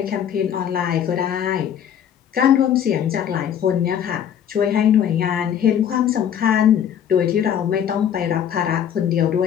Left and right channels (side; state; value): right; quieter; 9.2 dB